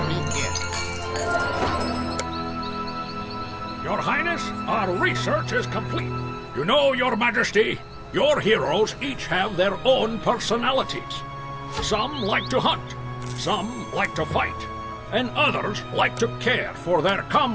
Your Highness, our research is complete. You know, Your Majesty, your heroes each have their own personalities. Some like to hunt, some like to fight, and others like to care for their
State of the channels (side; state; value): both; identical; correlation 1.00